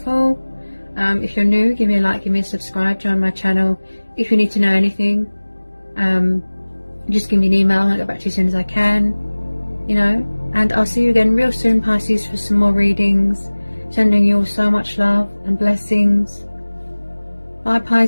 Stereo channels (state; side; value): inverted; both; correlation -1.00